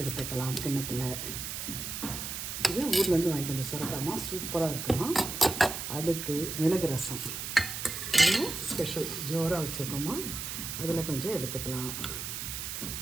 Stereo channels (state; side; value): noise; right; hiss, 5 dB below the sound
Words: கிண்ணத்தில். இது ஊர்லேருந்து வாங்கிட்டு வந்த சுரக்காமா, சூப்பராக இருக்குமா. அடுத்து மிளகு ரசம், அதுவும் ஸ்பெஷல் ஜோராக வச்சுருக்கோமா. அதில் கொஞ்சம் எடுத்துக்கலாம்.